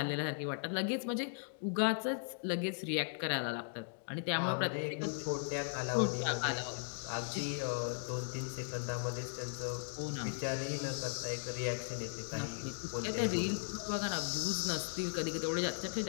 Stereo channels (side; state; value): right; silent; digital silence